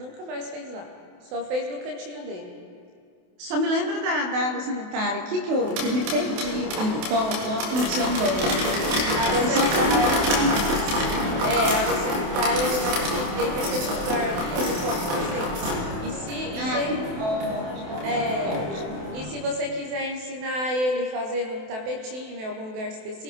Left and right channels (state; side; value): late; left; 28 ms